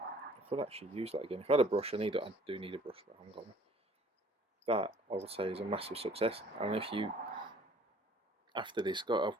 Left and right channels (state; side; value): normal; both; correlation 0.54